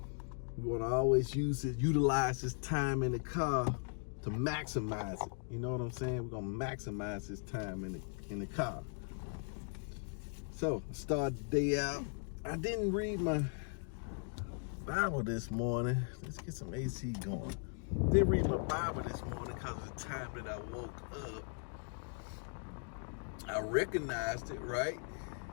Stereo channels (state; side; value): silent; right; 52 dB below the other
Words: We want to always utilize this time in the car to maximize it. You know what I'm saying? We're going to maximize this time in the car. So, start the day out. I didn't read my Bible this morning. Let's get some AC going. Didn't read my Bible this morning because of the time that I woke up. I recognized it, right